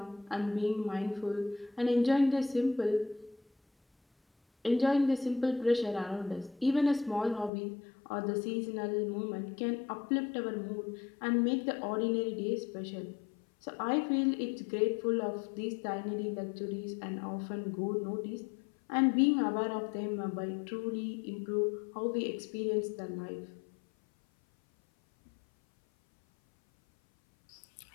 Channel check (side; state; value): right; drops out; at 7.5 s